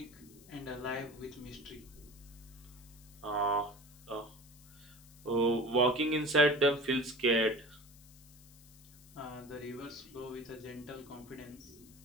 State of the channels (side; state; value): left; noise; hiss, 23 dB below the sound